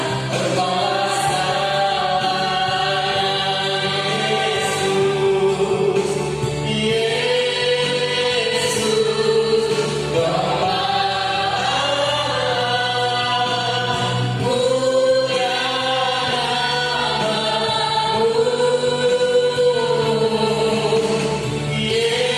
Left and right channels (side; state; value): both; identical; correlation 1.00